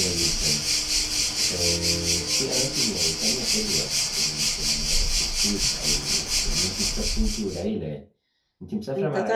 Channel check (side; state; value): both; identical; correlation 1.00